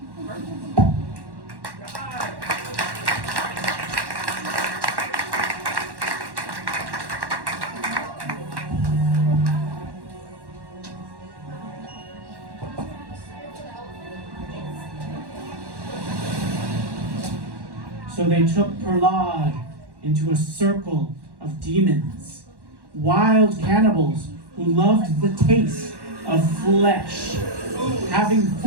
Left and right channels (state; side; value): late; left; 1.1 ms